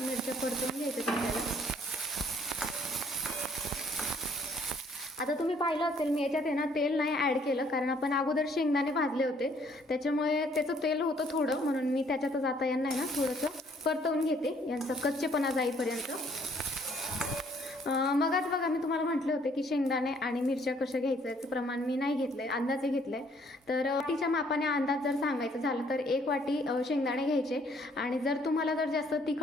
मिरच्या परतवून घ्यायच्यात आपल्याला. आता तुम्ही पाहिलं असेल मी याच्यात आहे ना तेल नाही ॲड केलं, कारण आपण अगोदर शेंगदाणे भाजले होते त्याच्यामुळे त्याचं तेल होतं थोडं, म्हणून मी त्याच्यातच आता यांना आहे ना थोडंसं परतवून घेते, यांचा कच्चेपणा जाईपर्यंत. मगच बघा मी तुम्हाला म्हटले होते की शेंगदाणे आणि मिरच्या कशा घ्यायचं याचं प्रमाण मी नाही घेतलं आहे, अंदाजे घेतलं आहे. तर वाटीच्या मापाने अंदाज जर सांगायचं झालं तर 1 वाटी शेंगदाणे घ्यायचे. आणि जर तुम्हाला जर जास्त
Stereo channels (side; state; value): both; normal; correlation 0.63